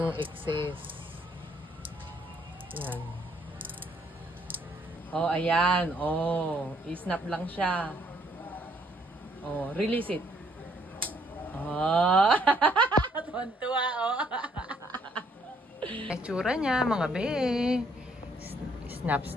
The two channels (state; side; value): normal; both; correlation 0.67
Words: excess. Yan. Oh, ayan. Oh, i-snap lang siya. Oh, release it. Oh. Tuwan-tuwa, oh. Itsura niya, mga be.